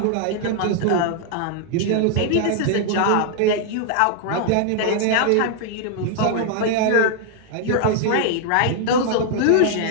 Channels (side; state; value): both; different; correlation 0.00